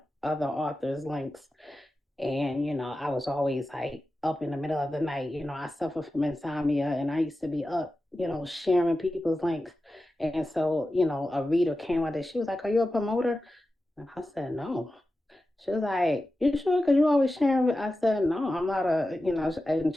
other authors' links. And, I was always like up in the middle of the night. I suffer from insomnia and I used to be up, sharing people's links. And so, a reader came out there. She was like, "Are you a promoter?" And I said, "No." She was like, "You sure? Because you always sharing." I said, "No, I'm not and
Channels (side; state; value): both; normal; correlation 0.93